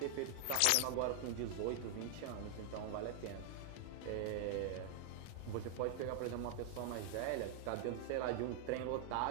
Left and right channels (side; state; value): both; different; correlation 0.00